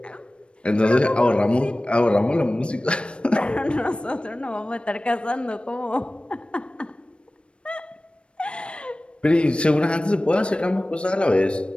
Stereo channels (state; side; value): late; right; 0.057 ms